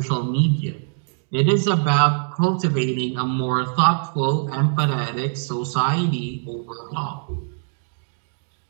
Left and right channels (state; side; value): silent; left; digital silence